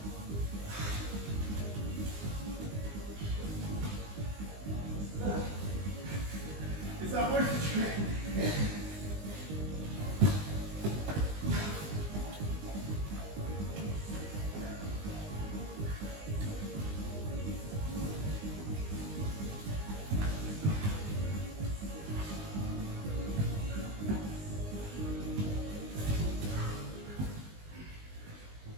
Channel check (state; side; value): late; left; 20 ms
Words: It's not worth the trip.